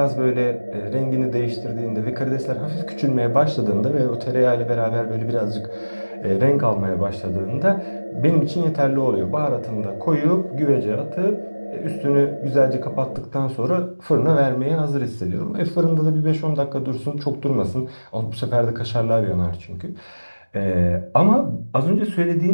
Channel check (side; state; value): both; inverted; correlation -1.00